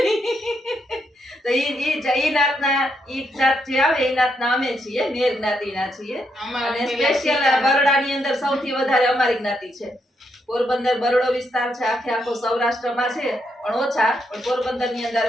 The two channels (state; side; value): normal; both; correlation 0.79